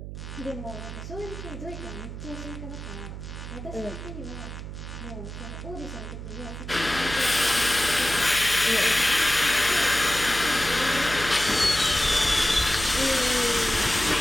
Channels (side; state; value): right; noise; hum, 9 dB below the sound